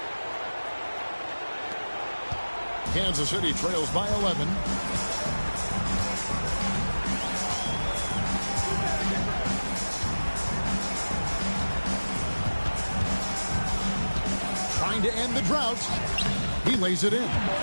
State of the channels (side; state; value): both; inverted; correlation -1.00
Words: Kansas City trails by 11. Trying to end the drought. He lays it in.